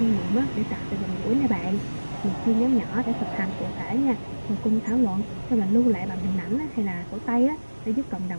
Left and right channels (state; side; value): inverted; both; correlation -1.00